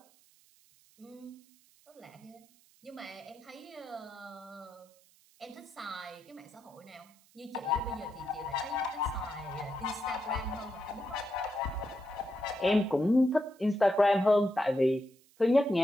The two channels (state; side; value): noise; right; hiss, 29 dB below the sound